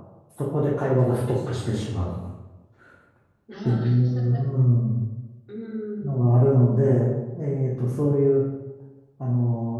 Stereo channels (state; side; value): identical; both; correlation 1.00